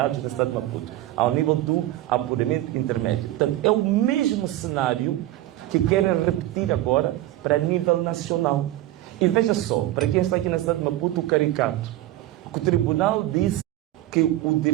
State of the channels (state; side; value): quieter; left; 15.3 dB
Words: na cidade de Maputo, ao nível do apuramento intermédio. Portanto, é o mesmo cenário que querem repetir agora para nível nacional. E veja só, para quem está aqui na cidade de Maputo, o caricato, que o tribunal disse que o